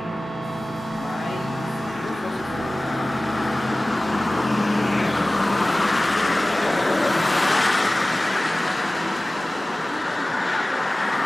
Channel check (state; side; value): normal; both; correlation 0.98